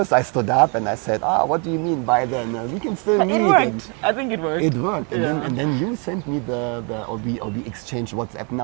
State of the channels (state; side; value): quieter; left; 35.8 dB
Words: I stood up and I said, what do you mean by then? We can still meet. It worked. I think it worked. It worked. And then you sent me or we exchanged WhatsApp